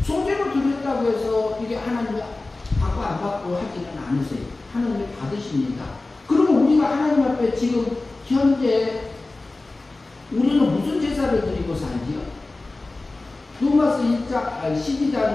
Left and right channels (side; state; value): right; quieter; 3.2 dB